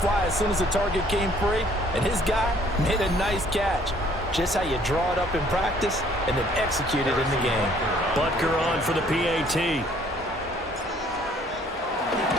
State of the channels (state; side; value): normal; both; correlation 0.60